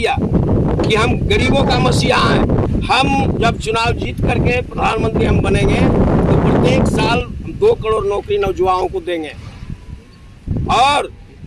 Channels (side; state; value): both; identical; correlation 1.00